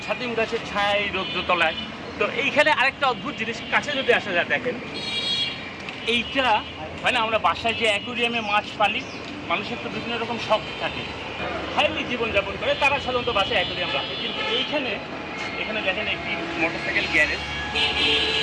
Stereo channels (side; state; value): both; identical; correlation 1.00